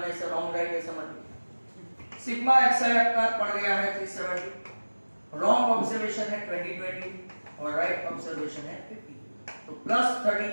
ऐसा रॉन्ग राइट ऐसा मत लिखना. सिग्मा xi आपका पड़ गया है 370, रॉन्ग ऑब्जर्वेशन है 2020 और राइट ऑब्जर्वेशन है 50, तो प्लस 30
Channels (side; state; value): both; inverted; correlation -1.00